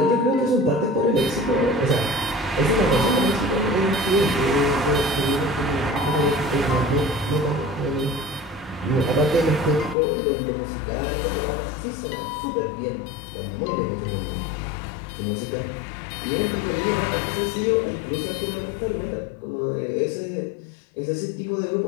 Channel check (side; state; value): right; drops out; at 10.0 s